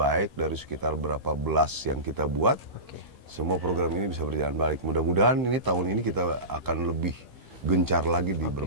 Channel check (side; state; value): left; late; 15 ms